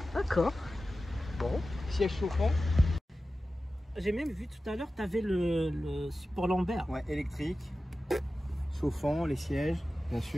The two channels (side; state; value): both; normal; correlation 0.95